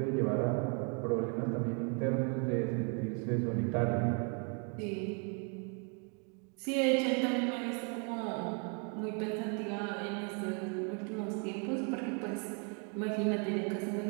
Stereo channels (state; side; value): quieter; left; 39.1 dB